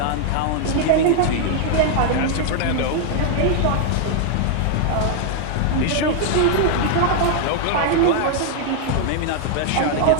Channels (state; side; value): different; both; correlation 0.00